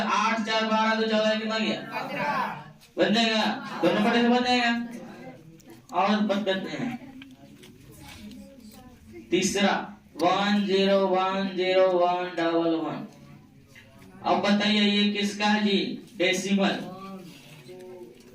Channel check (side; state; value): both; identical; correlation 1.00